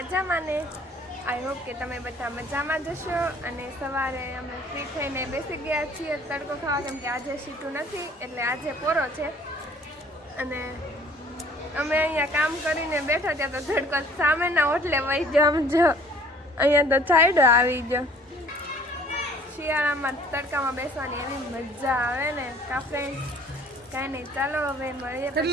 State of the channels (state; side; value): normal; both; correlation 0.55